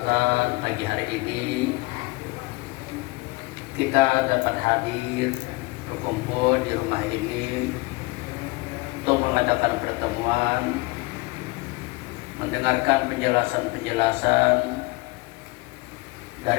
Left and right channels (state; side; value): quieter; right; 24.5 dB